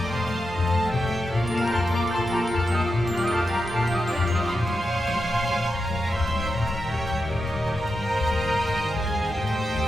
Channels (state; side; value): normal; both; correlation 0.88